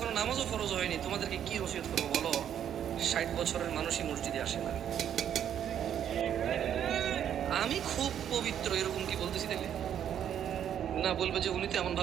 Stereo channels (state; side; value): quieter; left; 9.6 dB